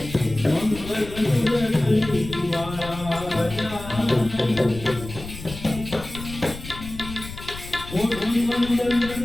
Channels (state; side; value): noise; left; rumble, 12 dB below the sound